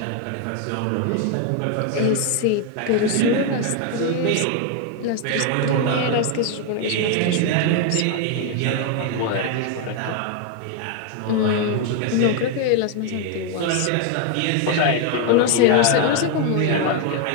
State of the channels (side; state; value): both; different; correlation 0.01